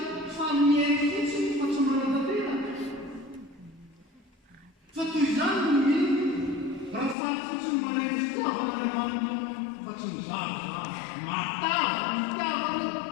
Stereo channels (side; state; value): right; drops out; at 7.2 s